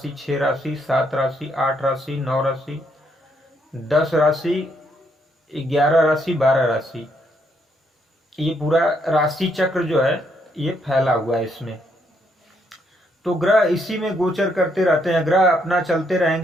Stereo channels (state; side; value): normal; both; correlation 0.74